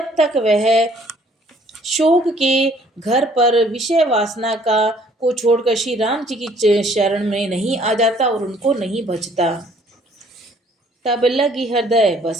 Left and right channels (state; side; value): normal; both; correlation 0.60